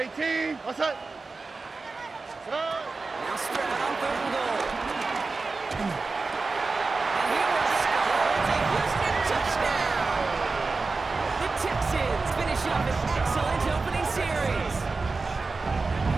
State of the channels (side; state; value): left; quieter; 3.9 dB